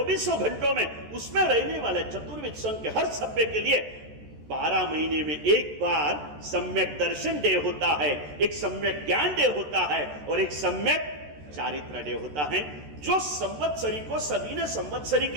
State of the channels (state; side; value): late; left; 14 ms